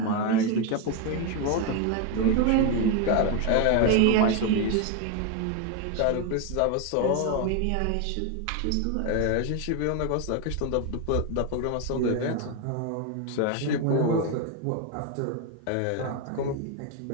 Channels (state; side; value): different; both; correlation 0.01